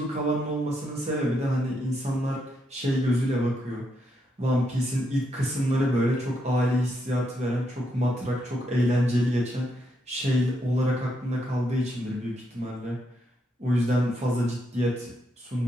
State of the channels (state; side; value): normal; both; correlation 0.79